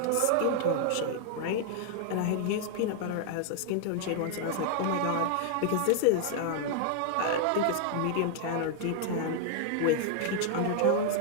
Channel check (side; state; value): both; different; correlation 0.00